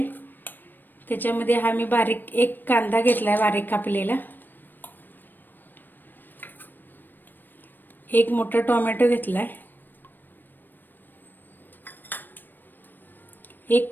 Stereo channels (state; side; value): late; right; 0.092 ms